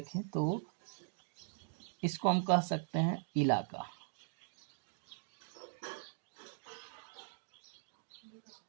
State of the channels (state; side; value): silent; left; digital silence